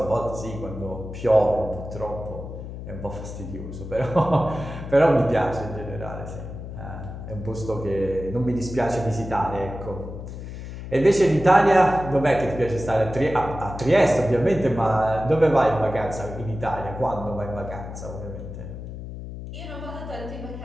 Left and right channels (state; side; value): noise; left; hum, 10 dB below the sound